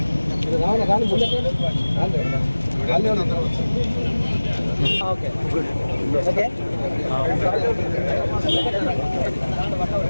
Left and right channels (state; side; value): inverted; both; correlation -1.00